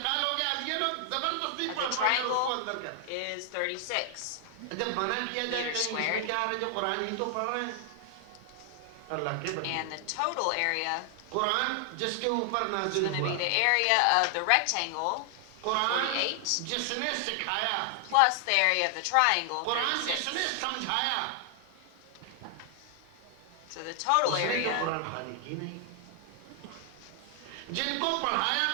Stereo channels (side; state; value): both; different; correlation 0.00